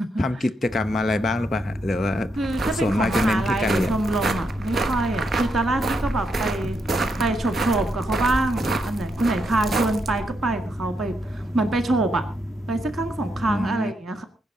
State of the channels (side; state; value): both; normal; correlation 0.80